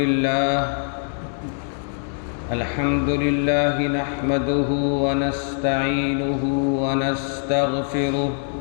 لله نحمده ونستعينه ونستغفره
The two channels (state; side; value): silent; right; 64 dB below the other